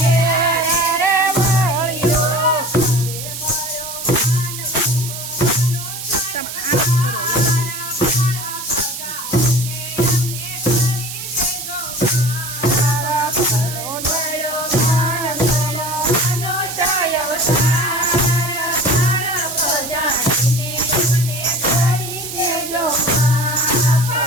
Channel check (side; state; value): right; noise; hiss, 8 dB below the sound